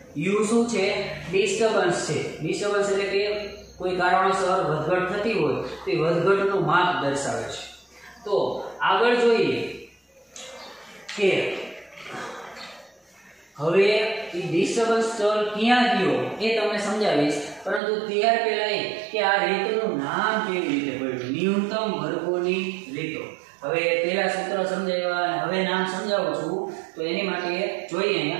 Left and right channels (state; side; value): drops out; left; at 17.8 s